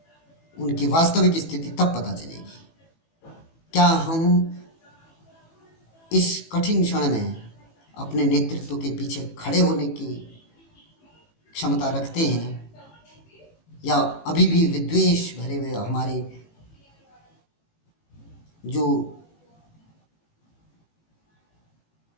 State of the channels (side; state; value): right; late; 18 ms